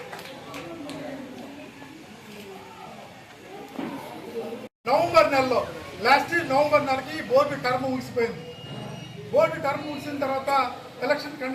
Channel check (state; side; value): identical; both; correlation 1.00